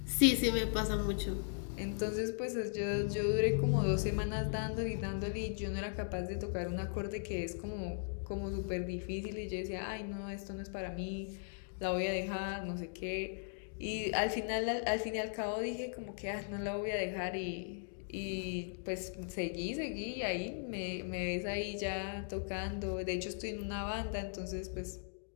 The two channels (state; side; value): silent; right; digital silence